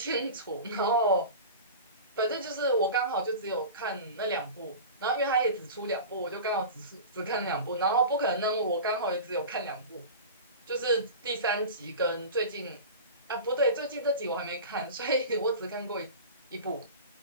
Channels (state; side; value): inverted; both; correlation -0.32